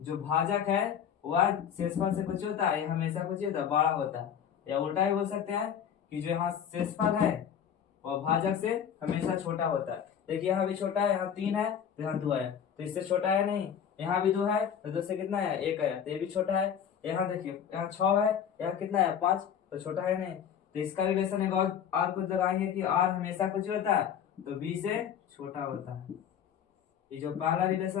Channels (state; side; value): quieter; right; 8.5 dB